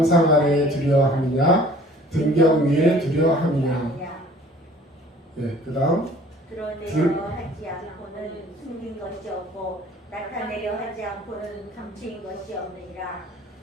아래에 두려 함이냐 등경 위에 두려 함이냐. 예, 그 다음 드러내려 하지 않고는 숨긴 것이 없고 나타내려 하지 않고는 감추인 것이 없느니라.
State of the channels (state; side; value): normal; both; correlation 0.51